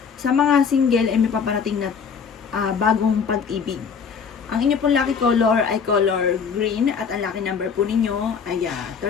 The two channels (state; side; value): quieter; right; 6.3 dB